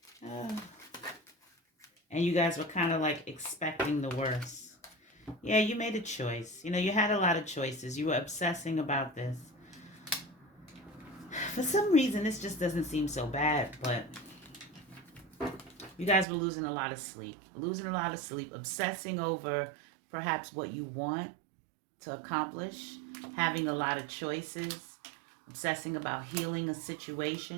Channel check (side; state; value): left; drops out; at 16.2 s